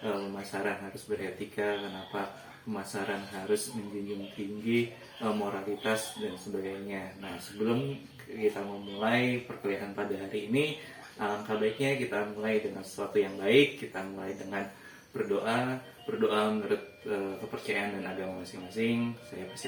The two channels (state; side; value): identical; both; correlation 1.00